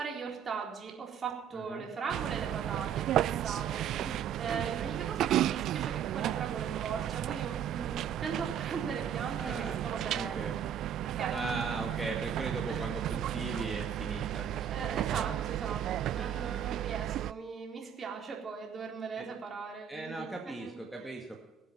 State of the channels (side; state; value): left; quieter; 8.4 dB